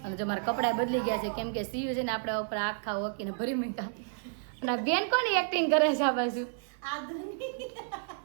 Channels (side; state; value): left; silent; 57 dB below the other